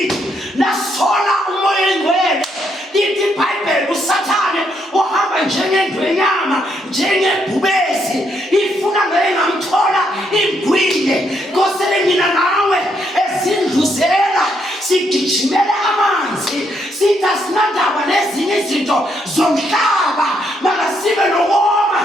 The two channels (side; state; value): both; normal; correlation 0.75